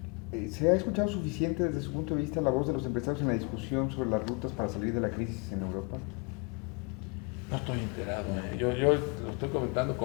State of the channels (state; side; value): quieter; right; 30.9 dB